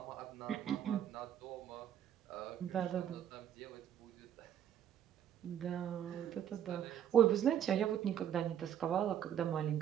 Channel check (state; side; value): quieter; left; 10.0 dB